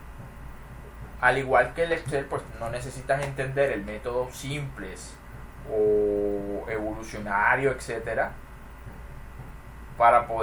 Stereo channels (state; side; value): identical; both; correlation 1.00